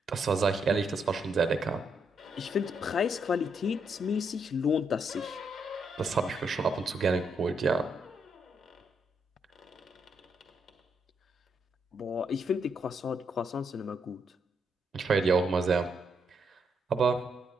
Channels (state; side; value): normal; both; correlation 0.77